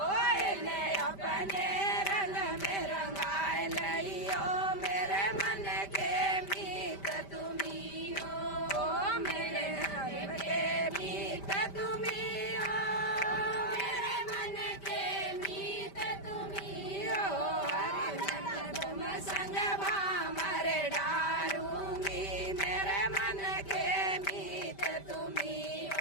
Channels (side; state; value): right; late; 5.1 ms